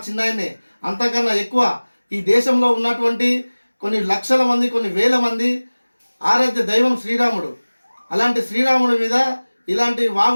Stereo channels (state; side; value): inverted; both; correlation -1.00